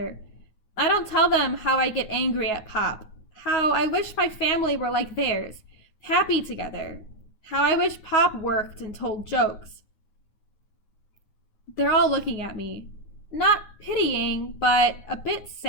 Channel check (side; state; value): right; late; 9.5 ms